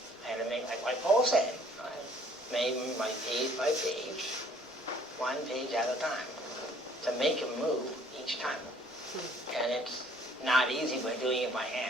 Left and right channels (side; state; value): both; normal; correlation 0.58